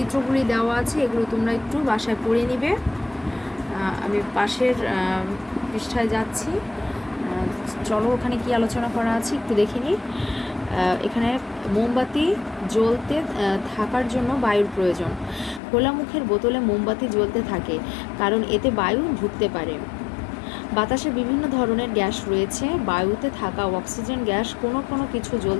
দেওয়া আছে, এগুলো তোমরা একটু বাসায় পড়ে নিবে। আমি পাশের পৃষ্ঠায় যাচ্ছি। চলো ওখানে কি আলোচনা করা আছে একটু দেখে নিই। এখানে মোমবাতি জ্বলতে থাকার জন্য বায়ুর প্রয়োজন। খোলা মুখের বোতলে মোমবাতি জ্বলতে থাকে কারণ এতে বায়ু ঢুকতে পারে। বাতাসে বিভিন্ন ধরনের গ্যাস রয়েছে, বায়ুতে থাকা অক্সিজেন গ্যাস কোনো কোনো কিছু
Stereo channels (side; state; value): right; drops out; at 15.6 s